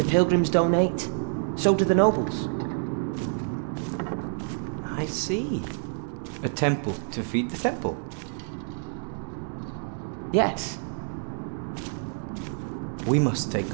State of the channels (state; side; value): silent; left; 60 dB below the other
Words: pilgrims donate. So do the nobles. I see. A temple to feed the temple. Yes. We must take